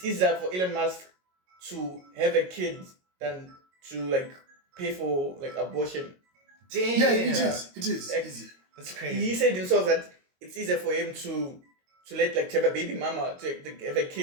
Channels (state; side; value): late; left; 22 ms